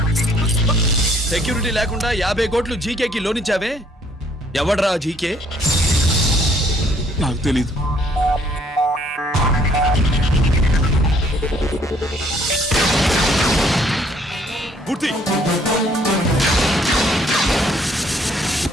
సెక్యూరిటీ లేకుండా 50 కోట్లు జీకేకి లోన్ ఇచ్చావే, ఎవడ్రా జీకే? నాకు తెలీదు. మూర్తి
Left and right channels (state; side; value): normal; both; correlation 0.63